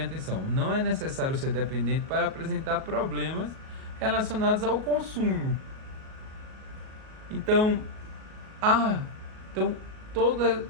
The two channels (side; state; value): left; late; 37 ms